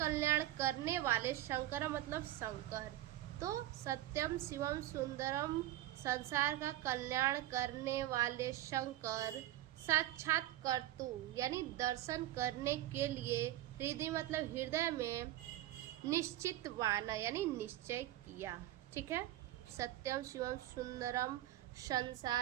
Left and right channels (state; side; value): quieter; left; 14.3 dB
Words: करने वाले, शंकर मतलब शंकर। तो सत्यम शिवम सुंदरम संसार का कल्याण करने वाले शंकर, साक्षात कर्तु यानी दर्शन करने के लिए, हृदय मतलब हृदय में, निश्चित वाना यानी निश्चय किया। ठीक है, सत्यम शिवम सुंदरम